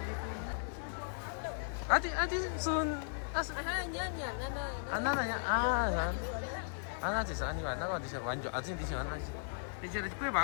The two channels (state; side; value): silent; right; 53 dB below the other